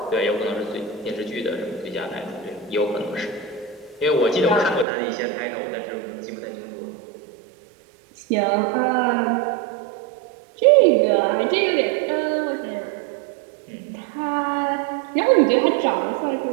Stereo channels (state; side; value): drops out; left; at 4.9 s